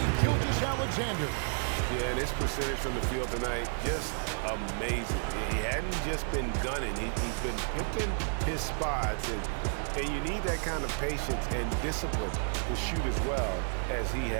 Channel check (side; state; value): left; silent; 57 dB below the other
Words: Gilgeous-Alexander. Yeah, and his percentage from the field tonight, just amazing. He hadn't just been gunning. He's been picking his spots, and you need that kind of patience and discipline to shoot as well as he